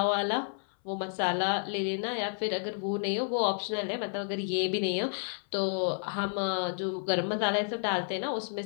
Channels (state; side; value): silent; right; 57 dB below the other